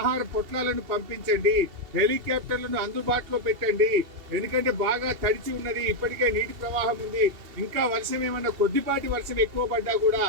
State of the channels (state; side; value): late; left; 2.7 ms